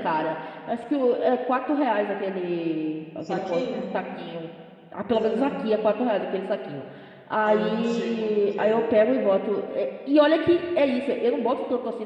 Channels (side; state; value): both; identical; correlation 1.00